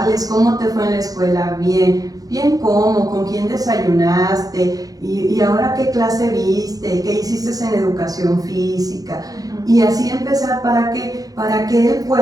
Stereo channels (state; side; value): late; left; 0.18 ms